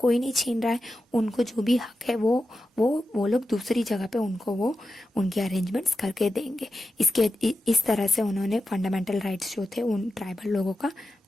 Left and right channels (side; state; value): both; normal; correlation 0.90